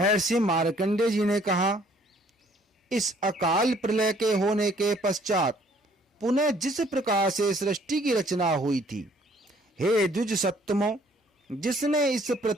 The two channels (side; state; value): both; normal; correlation 0.61